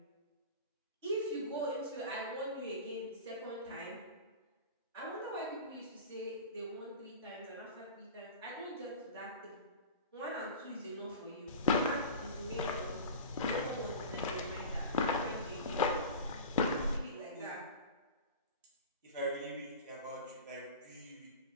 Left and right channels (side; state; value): both; inverted; correlation -0.33